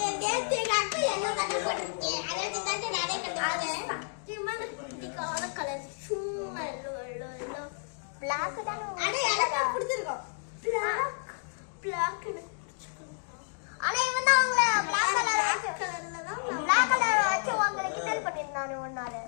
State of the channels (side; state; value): right; silent; digital silence